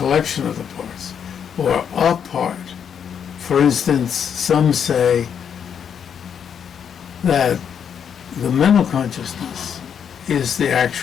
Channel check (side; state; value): right; quieter; 7.8 dB